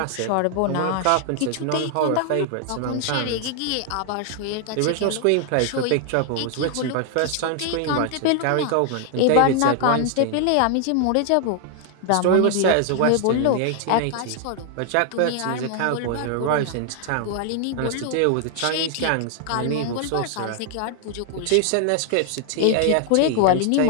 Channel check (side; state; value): both; different; correlation 0.00